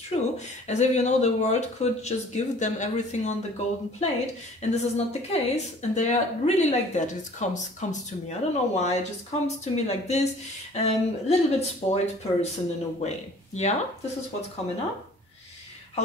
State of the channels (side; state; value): both; normal; correlation 0.51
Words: true. As if, you know, the world could just give them everything on the golden plate, and this is not the case. And they are really like that. It comes to me. I don't know why. It just comes to me like this. A little bit spoiled person in a way. Yeah, this is what's coming up.